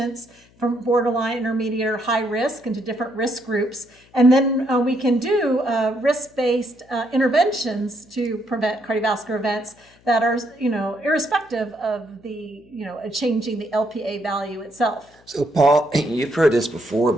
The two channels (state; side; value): noise; left; hum, 29 dB below the sound